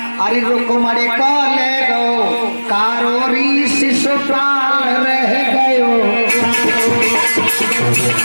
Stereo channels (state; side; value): inverted; both; correlation -1.00